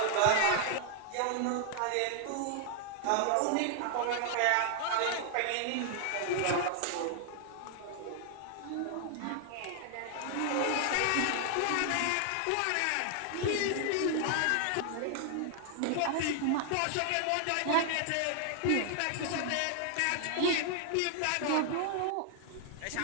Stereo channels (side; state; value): both; different; correlation 0.00